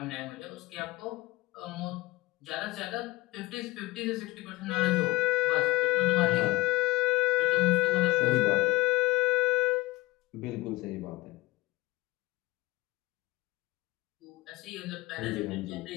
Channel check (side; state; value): right; quieter; 19.9 dB